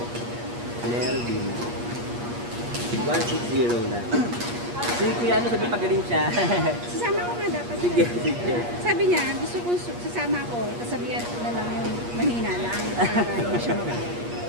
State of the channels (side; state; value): left; late; 8.4 ms